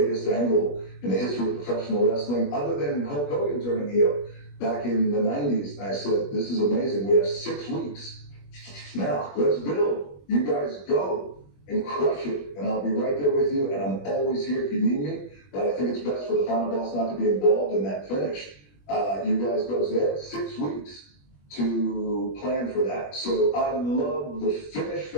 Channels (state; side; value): late; right; 21 ms